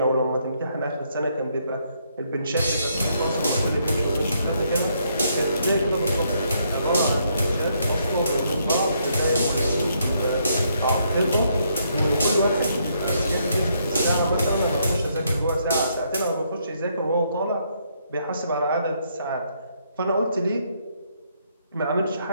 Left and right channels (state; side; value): inverted; both; correlation -0.73